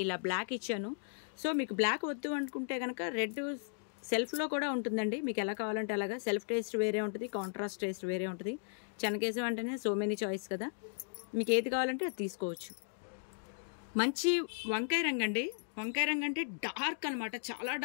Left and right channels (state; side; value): silent; right; digital silence